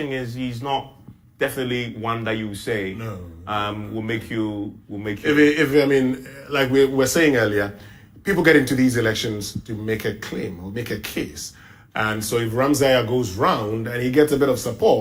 is he's not definitely one that you say will make you. If I mean, like we were saying earlier, people get into these elections to make a claim or make a case, and so if Ramsey goes round and he gets a bit of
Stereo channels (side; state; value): both; identical; correlation 1.00